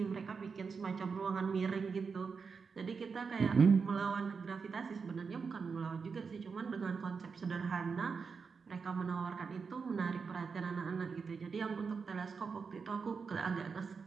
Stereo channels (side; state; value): left; quieter; 5.3 dB